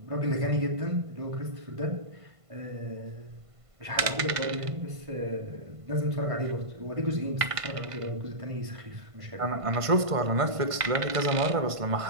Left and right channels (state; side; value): late; left; 1.5 ms